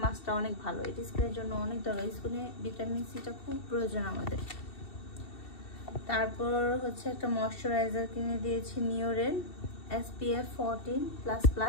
মাস্কটা অনেক ভালো। এটা স্কিনের জন্য অনেক দরকার, স্কিনে ভিটামিন সিটা খুব প্রয়োজন আমাদের। তারপর হচ্ছে একটা ময়শ্চারাইজার কিনে দিয়েছি নিওরের SPF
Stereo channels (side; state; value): right; late; 2.7 ms